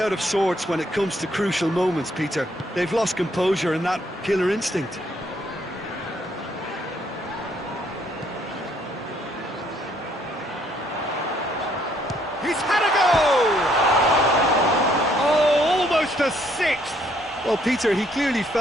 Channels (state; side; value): normal; both; correlation 0.67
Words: of sorts when it comes to crucial moments, Peter. They've lost composure and that killer instinct. He's had a go! Oh, almost a sixth! Well, Peter, he clearly